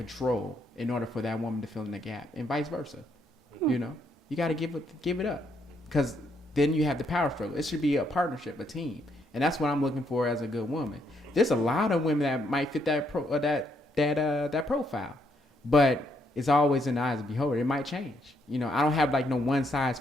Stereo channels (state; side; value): normal; both; correlation 0.74